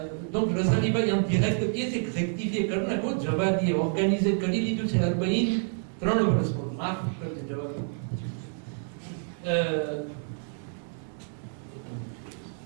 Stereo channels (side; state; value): left; silent; 59 dB below the other